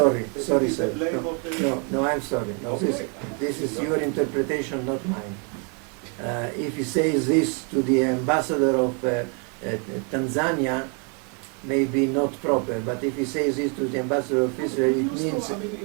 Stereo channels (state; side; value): quieter; left; 37.5 dB